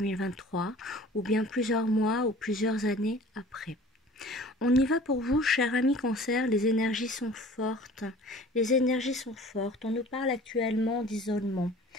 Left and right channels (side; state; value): both; normal; correlation 0.46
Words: ou bien plusieurs mois ou plusieurs années après. On y va pour vous, cher ami cancer, les énergies sont fortes. Les énergies sont fortes. On nous parle actuellement d'isolement.